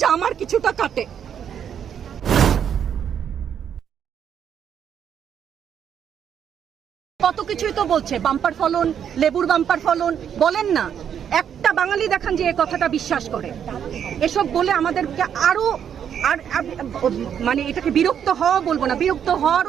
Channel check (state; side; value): quieter; left; 8.6 dB